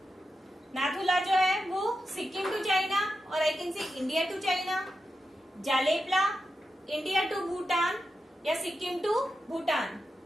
नाथुला जो है वो सिक्किम टू चाइना, और I can say India to China. Jelepla India to Bhutan या Sikkim to Bhutan.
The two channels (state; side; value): normal; both; correlation 0.89